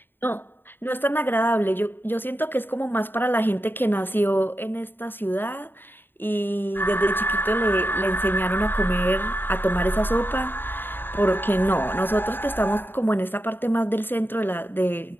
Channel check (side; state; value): right; late; 0.097 ms